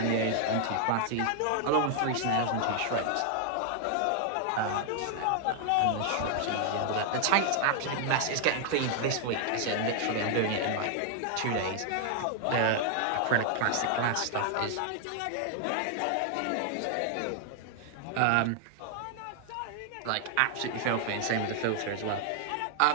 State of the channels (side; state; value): both; different; correlation 0.00